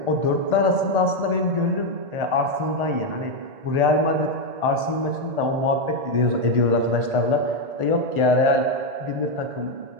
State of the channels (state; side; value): late; left; 1.4 ms